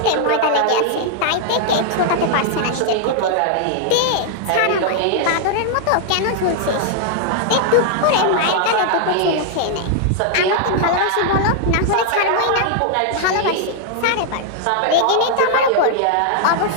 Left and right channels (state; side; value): different; both; correlation -0.01